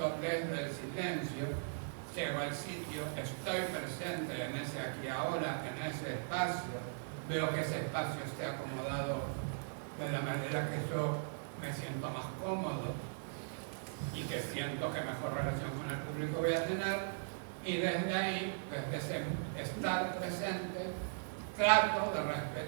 desde el silencio, llego al sitio, estoy presente en ese aquí ahora, en ese espacio, veo que ese espacio esté acomodado de la manera que yo me siento más cómodo y que siento que mejor relación con el público voy a tener, y desde ahí, desde ese estar presente, trato de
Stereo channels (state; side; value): silent; left; digital silence